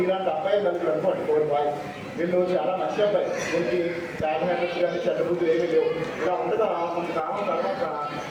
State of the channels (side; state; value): both; identical; correlation 1.00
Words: మీలాంటి అబ్బాయి కలిసి అనుకోండి 4 బాయ్స్. వీళ్ళు చాలా మంచి అబ్బాయి. వీళ్ళకి బ్యాడ్ హ్యాబిట్స్ కానీ చెడ్డ బుద్ధులు ఏమీ లేవు. ఇలా ఉండగా కొంతకాలం తర్వాత